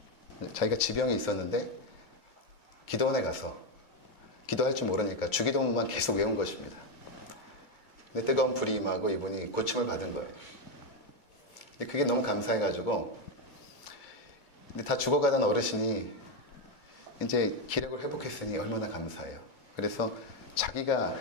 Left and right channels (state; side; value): late; right; 2.2 ms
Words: 자기가 지병이 있었는데 기도원에 가서 기도할 줄 모르니까 주기도문만 계속 외운 것입니다. 근데 뜨거운 불이 임하고 이분이 고침을 받은 거예요. 근데 그게 너무 감사해가지고, 근데 다 죽어가던 어르신이 이제 기력을 회복했으니 얼마나 감사해요. 그래서 자기가